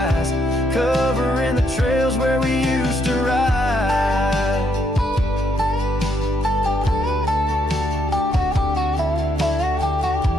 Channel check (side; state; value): both; normal; correlation 0.74